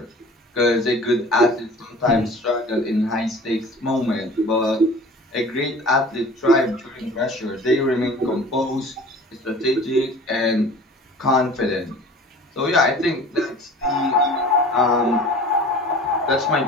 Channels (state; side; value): normal; both; correlation 0.44